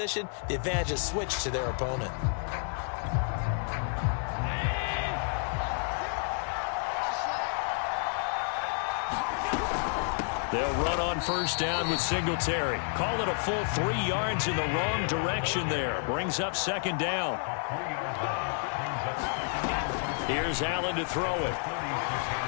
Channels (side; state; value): right; silent; 55 dB below the other